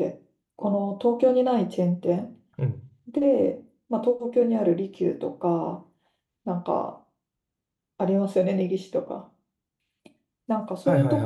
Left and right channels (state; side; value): identical; both; correlation 1.00